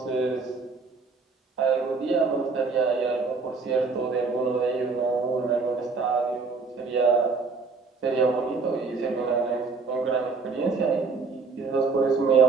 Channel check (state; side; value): quieter; left; 4.5 dB